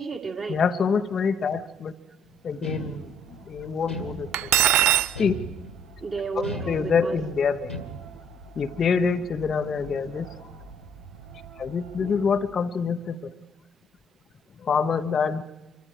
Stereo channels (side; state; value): both; normal; correlation 0.64